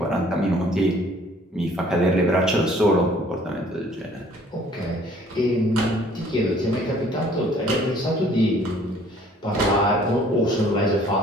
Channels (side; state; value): both; normal; correlation 0.56